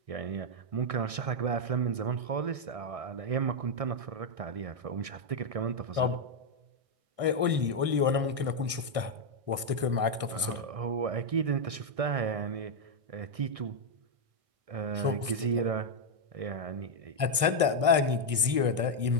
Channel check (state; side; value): late; left; 1.6 ms